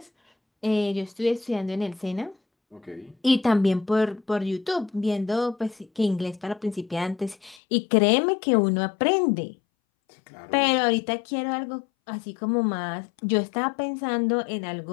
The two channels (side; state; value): right; drops out; at 7.6 s